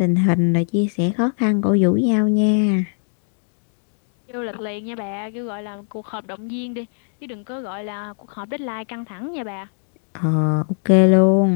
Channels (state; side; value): silent; right; 65 dB below the other